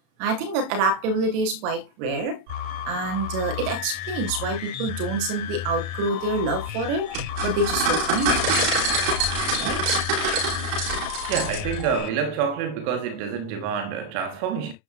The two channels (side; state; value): left; late; 32 ms